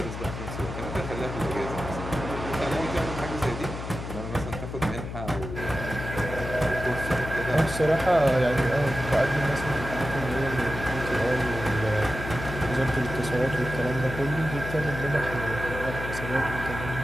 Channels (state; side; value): noise; left; hum, 7 dB below the sound